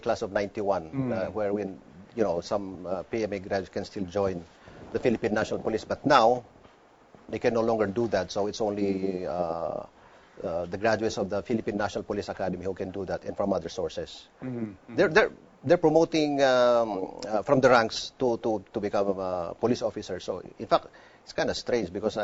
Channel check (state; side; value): identical; both; correlation 1.00